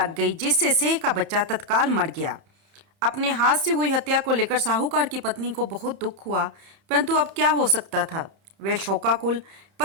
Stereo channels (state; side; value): late; left; 30 ms